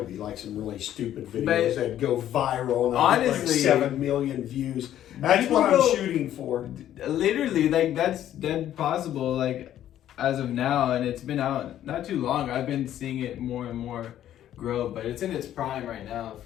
be like some really stupid videos But that go viral and I'd get like honestly, 7 million views. That's what I'm shooting for. Literally, like that's dead possible. Like as of now, and it's been out not too long. I've been seeing it more and more grow, but it's in its prime right now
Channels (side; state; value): right; quieter; 11.6 dB